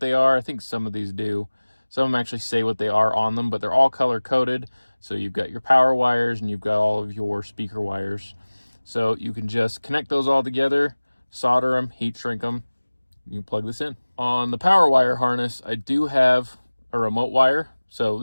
they are. I think some of these do. Some of them actually say what they are on them, but they're all color coded. So you've got your power wires and you've got all of your speaker wires. So you can just connect those all together, solder them, heat shrink them. You can plug this in. On the power wire harness, I do have a remote wire. So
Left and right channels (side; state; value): both; inverted; correlation -1.00